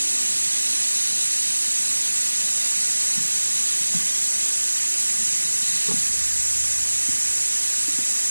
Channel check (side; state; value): both; inverted; correlation -1.00